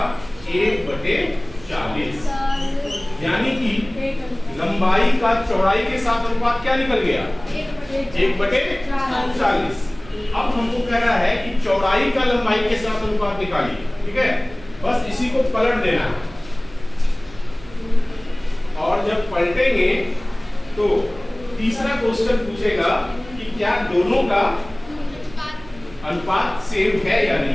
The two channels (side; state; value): right; noise; hum, 19 dB below the sound